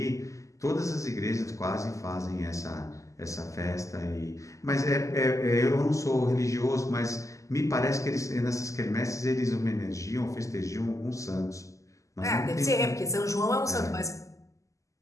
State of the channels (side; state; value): right; late; 0.16 ms